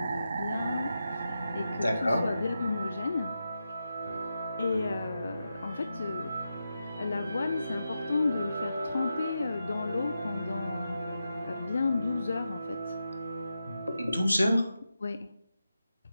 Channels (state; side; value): inverted; both; correlation -0.89